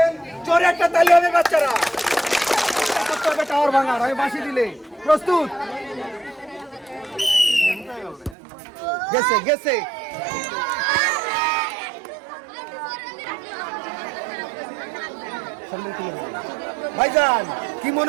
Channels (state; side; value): drops out; left; at 8.3 s